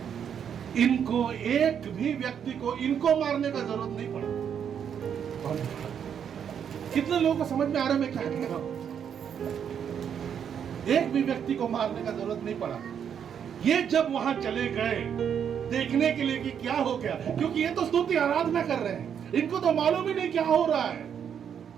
इनको, एक भी व्यक्ति को इनको मारने का जरूरत नहीं पड़ा। कितने लोगों को समझ में आ रहा है मैं क्या कह रहा हूं? एक भी व्यक्ति को मारने का जरूरत नहीं पड़ा। ये जब वहां चले गए देखने के लिए कि क्या हो गया, क्योंकि ये तो स्तुति आराधना कर रहे हैं, इनको तो मालूम ही नहीं क्या हो रहा है।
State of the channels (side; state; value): left; quieter; 8.2 dB